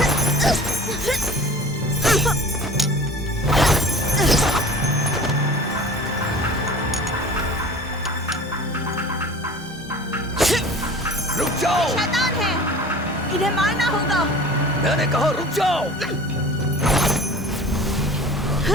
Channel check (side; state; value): both; normal; correlation 0.42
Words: रुक जाओ, शैतान है, इन्हें मारना होगा। मैंने कहा रुक जाओ।